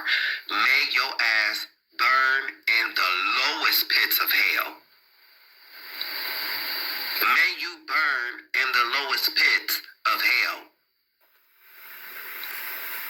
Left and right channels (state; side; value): identical; both; correlation 1.00